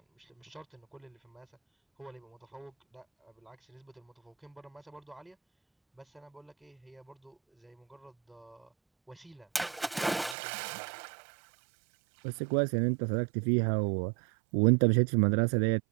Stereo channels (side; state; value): left; drops out; at 10.4 s